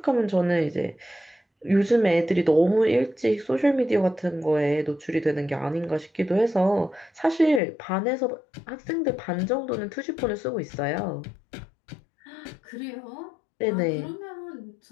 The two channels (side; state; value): right; drops out; at 7.6 s